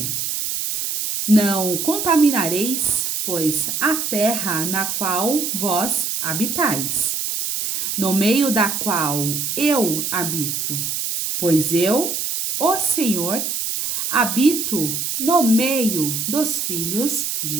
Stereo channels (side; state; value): right; noise; hiss, 2 dB below the sound